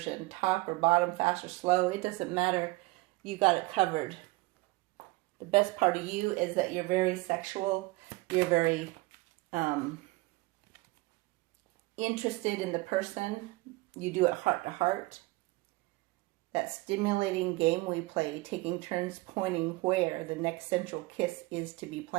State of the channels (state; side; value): quieter; left; 22.3 dB